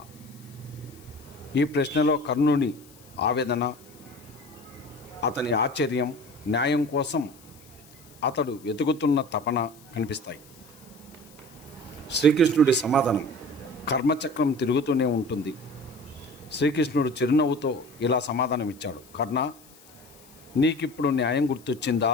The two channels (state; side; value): noise; left; hiss, 25 dB below the sound